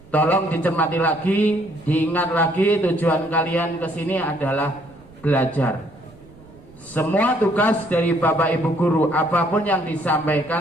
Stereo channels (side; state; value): right; noise; rumble, 24 dB below the sound